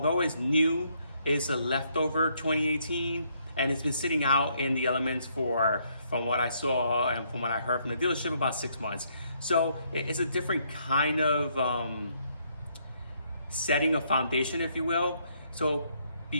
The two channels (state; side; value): inverted; both; correlation -0.71